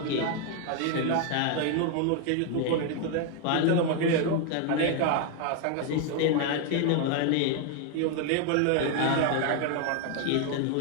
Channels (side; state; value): both; different; correlation 0.01